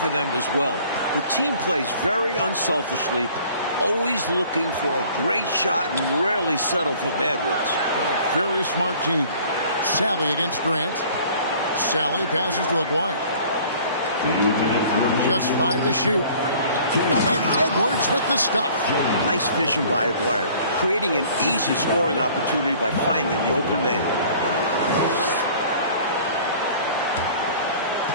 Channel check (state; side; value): inverted; both; correlation -0.51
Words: them as well. The team plays very unselfishly, always looking for a great shot and rarely settle for bad ones. A very smart team. Sally against Grant. Sally passes to Aguirre. Just 5 to shoot. And Edwards with the stuff. Nice vision by Aguirre, creating an easy scoring opportunity by finding the open man.